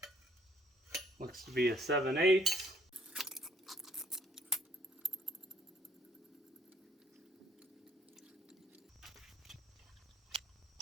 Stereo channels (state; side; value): normal; both; correlation 0.63